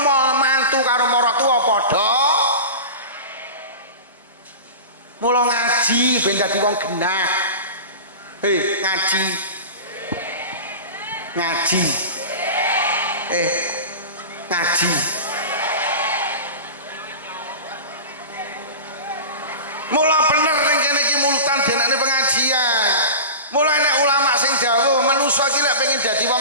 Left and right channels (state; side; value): inverted; both; correlation -0.31